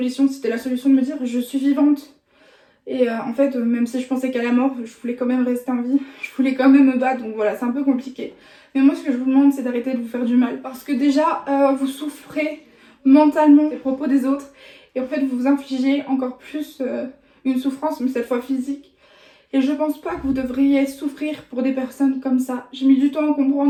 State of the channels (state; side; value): identical; both; correlation 1.00